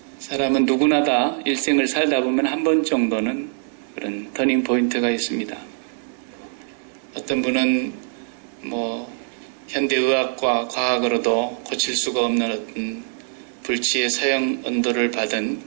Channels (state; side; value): silent; left; 62 dB below the other